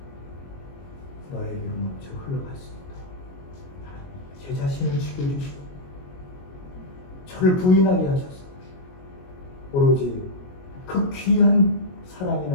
너에게로 넘쳐 흘러갔습니다. 하나님 제 자신을 죽여주시고 저를 부인하게 하셔서 오로지 그 귀한 사랑이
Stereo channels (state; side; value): late; right; 22 ms